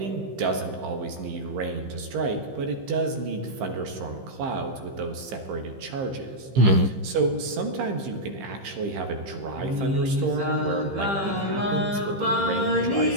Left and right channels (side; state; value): left; late; 15 ms